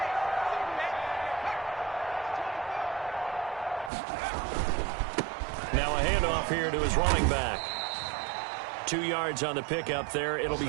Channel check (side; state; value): left; drops out; at 3.9 s